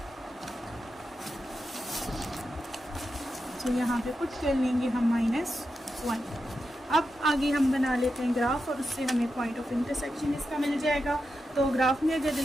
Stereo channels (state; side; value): normal; both; correlation 0.88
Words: तो यहाँ पे पुट कर लेंगे हम -1। अब आगे हम बना लेते हैं ग्राफ और उससे हमें पॉइंट ऑफ इंटरसेक्शन इसका मिल जाएगा। तो ग्राफ में अगर